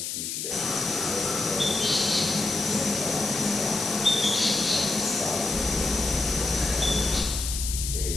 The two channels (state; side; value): noise; left; hiss, 3 dB below the sound